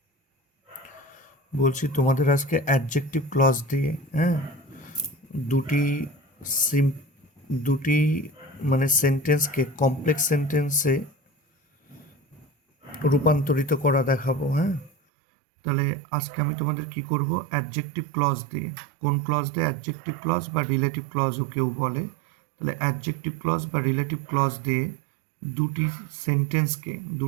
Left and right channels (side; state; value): left; drops out; at 14.9 s